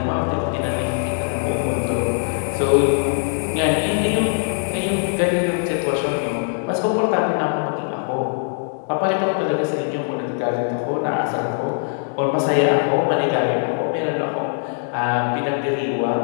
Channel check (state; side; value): silent; right; digital silence